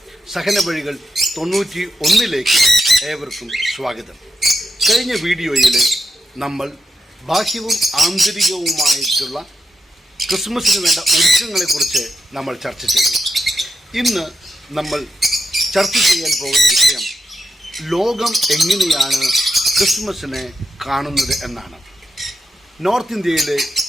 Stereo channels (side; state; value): both; normal; correlation 0.85